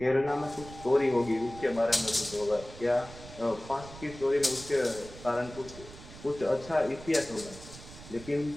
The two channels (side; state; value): right; noise; rumble, 16 dB below the sound